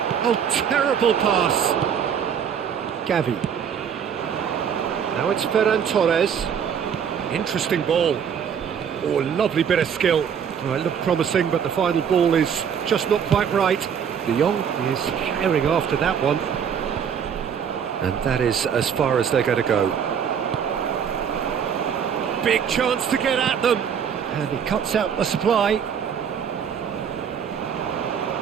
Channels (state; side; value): quieter; left; 7.7 dB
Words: Oh, terrible pass. Gavi. Now it's Ferran Torres. Interesting ball. Oh, lovely bit of skill. Oh, it looked promising, but the final ball is just not quite right. De Jong is carrying after that one. And that is as far as they're going to go. Big chance to get at them. And he cuts out the supply.